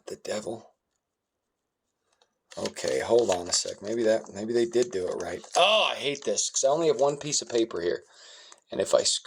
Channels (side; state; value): both; identical; correlation 1.00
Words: the devil? Okay, hold on a sec. Maybe they did do it right. Oh, I hate this because I only have one piece of paper here. And if I